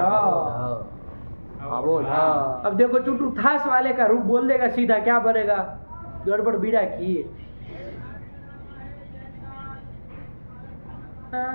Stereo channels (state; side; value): inverted; both; correlation -1.00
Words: अवोढ। अब देखो चुटू थास वाले का रूप बोल देगा सीधा, क्या बनेगा? गड़बड़ बीड़ा की।